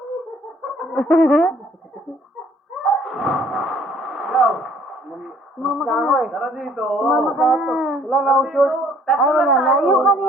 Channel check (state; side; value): normal; both; correlation 0.59